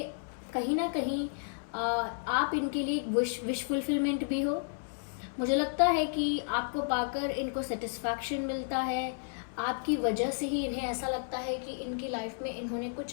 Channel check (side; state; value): right; silent; 56 dB below the other